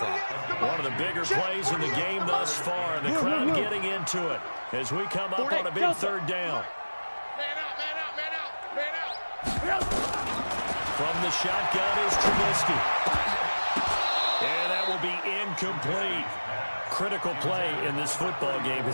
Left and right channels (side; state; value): both; inverted; correlation -1.00